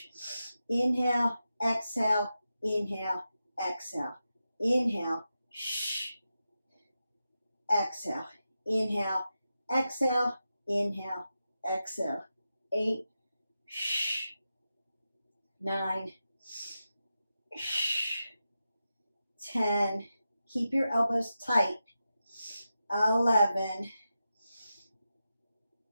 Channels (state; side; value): inverted; both; correlation -0.90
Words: Inhale, exhale, inhale, exhale. Inhale, exhale. Inhale, exhale, inhale, exhale. 8, 9, 10. Keep your elbows tight. 11,